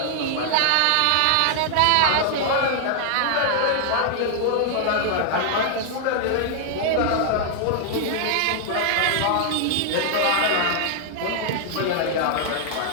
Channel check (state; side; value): different; both; correlation 0.00